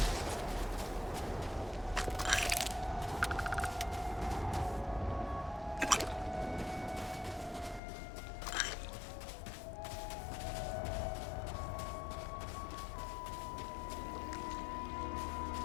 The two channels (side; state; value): right; drops out; at 7.8 s